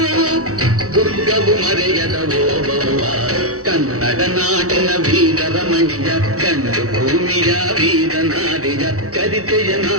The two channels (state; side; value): late; left; 0.65 ms